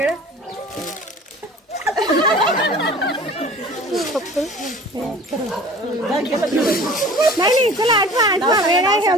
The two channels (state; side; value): normal; both; correlation 0.44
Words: नाही चला आठवा वेळ आहे